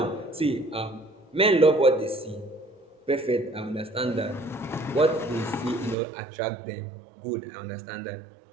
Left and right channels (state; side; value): drops out; left; at 6.0 s